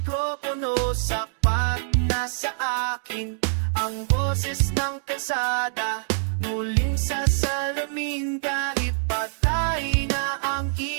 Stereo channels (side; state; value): left; silent; digital silence